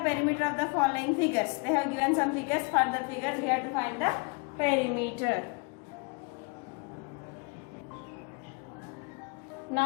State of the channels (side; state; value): right; quieter; 32.0 dB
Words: of the following figures. They have given some figures. For the figures we have to find the perimeter.